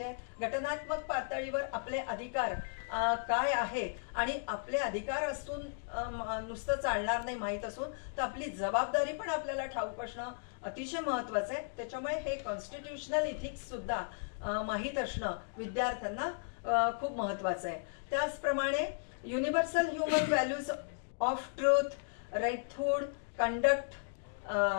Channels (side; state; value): right; silent; digital silence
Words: आहे। घटनात्मक पातळीवर आपले अधिकार काय आहे आणि आपले अधिकार असून नुसतं चालणार नाही, माहीत असून तर आपली जबाबदारी पण आपल्याला ठाऊक असणं अतिशय महत्त्वाचं आहे। त्याच्यामुळे हे कॉन्स्टिट्युशनल इथिक्स सुद्धा माहीत असणं विद्यार्थ्यांना खूप महत्त्वाचं आहे। त्याचप्रमाणे universal human values of truth, righthood, conduct,